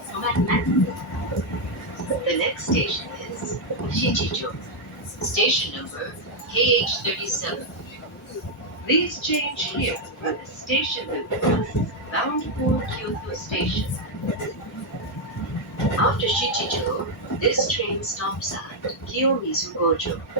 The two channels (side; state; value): both; normal; correlation 0.00